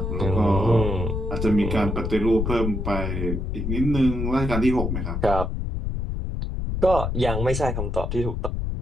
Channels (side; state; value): left; noise; rumble, 2 dB below the sound